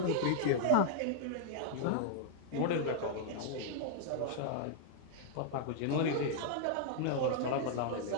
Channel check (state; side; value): different; both; correlation -0.01